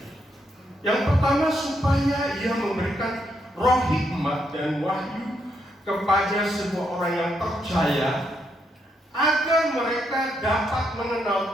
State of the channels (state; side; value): normal; both; correlation 0.78